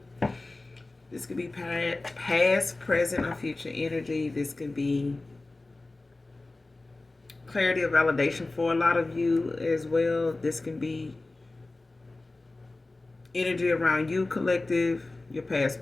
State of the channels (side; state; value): right; quieter; 3.1 dB